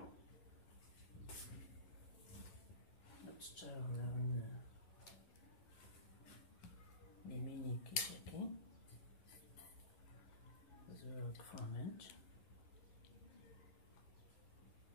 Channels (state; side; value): late; right; 11 ms